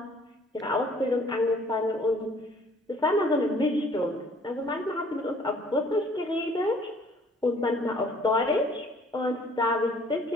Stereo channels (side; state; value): both; normal; correlation 0.57